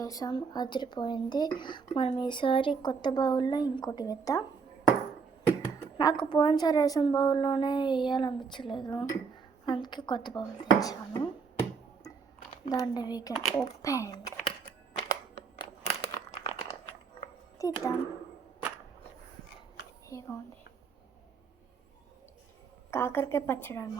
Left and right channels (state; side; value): quieter; left; 5.5 dB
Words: అదిరిపోయింది. మనం ఈసారి కొత్త బౌల్లో ఇంకోటి వేద్దాం. నాకు పోయినసారి వేసిన బౌల్లోనే వేయాలనిపించలేదు, అందుకే కొత్త బౌల్ తెచ్చాను. దాన్ని వీ కెన్ ఓపెన్ తీద్దాం. ఇదిగోండి కాకరకాయ పచ్చడి